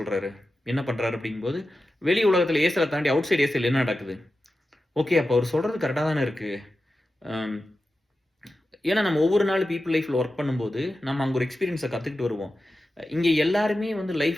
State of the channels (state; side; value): normal; both; correlation 0.92